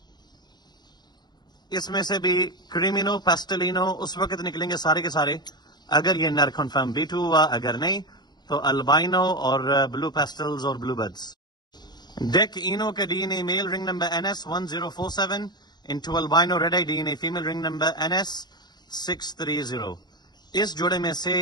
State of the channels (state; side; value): late; right; 0.20 ms